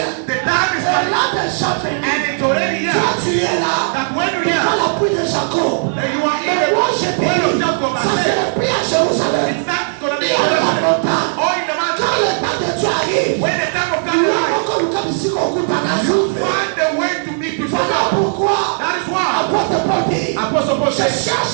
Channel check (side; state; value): left; silent; digital silence